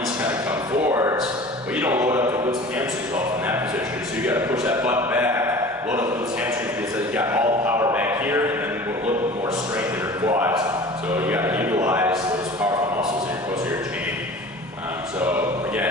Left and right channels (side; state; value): both; normal; correlation 0.41